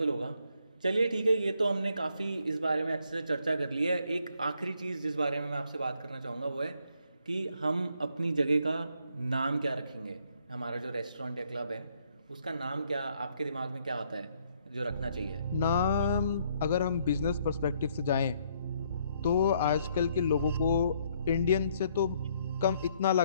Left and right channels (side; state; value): both; inverted; correlation -0.69